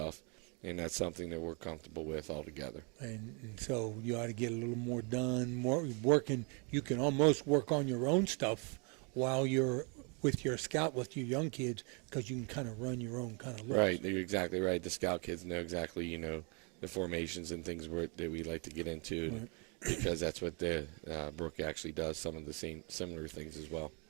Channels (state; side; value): quieter; left; 35.2 dB